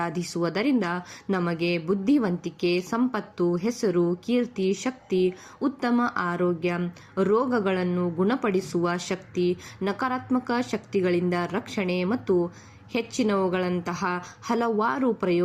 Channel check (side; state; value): both; identical; correlation 1.00